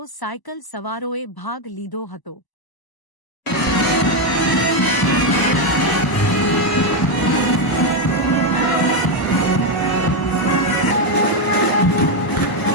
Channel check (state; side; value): late; right; 1.0 ms